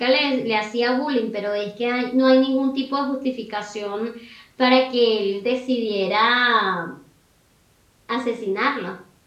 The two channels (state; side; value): identical; both; correlation 1.00